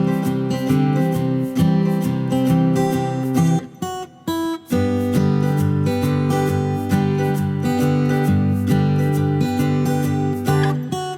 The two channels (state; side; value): identical; both; correlation 1.00